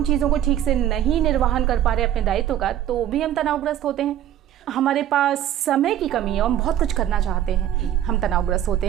चीज़ों को ठीक से नहीं निर्वहन कर पा रहे अपने दायित्व का, तो भी हम तनावग्रस्त होते हैं। हमारे पास समय की कमी है, हम बहुत कुछ करना चाहते हैं, हम तनावग्रस्त होते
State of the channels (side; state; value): left; quieter; 11.4 dB